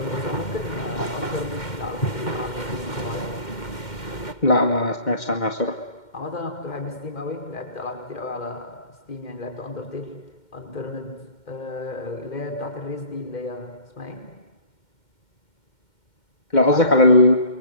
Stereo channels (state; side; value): late; right; 2.1 ms